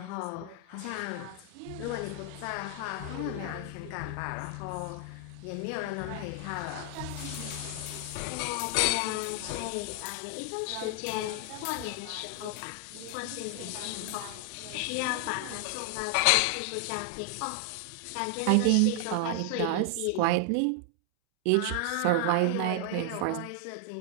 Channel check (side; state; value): both; different; correlation 0.00